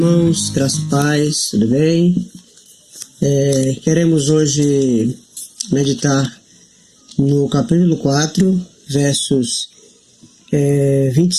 graça e paz, tudo bem? Queremos hoje meditar no capítulo 4, versos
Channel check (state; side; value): identical; both; correlation 1.00